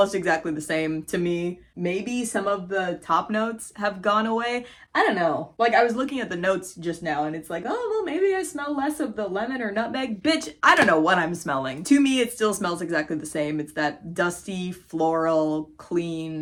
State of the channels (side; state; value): both; identical; correlation 1.00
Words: exactly the same to me. Maybe some of the top notes have gone away. I don't know. Like, I was looking at the notes just now and it's like, oh, well, maybe I smell less of the lemon or nutmeg. Bitch, I don't know what I'm smelling. To me, it still smells exactly the same. It's that dusty, floral,